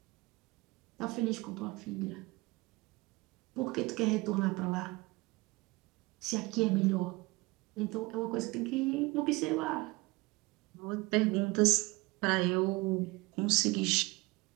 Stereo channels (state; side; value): quieter; left; 23.6 dB